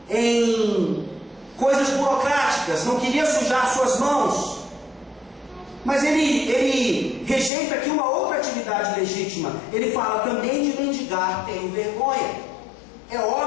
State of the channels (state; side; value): drops out; right; at 7.5 s